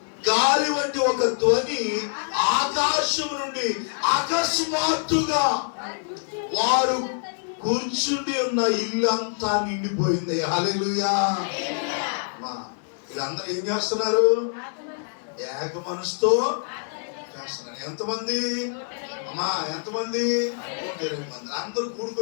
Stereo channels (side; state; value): right; silent; 62 dB below the other